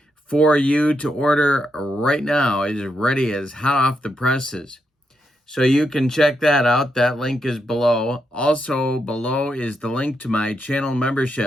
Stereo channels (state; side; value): normal; both; correlation 0.82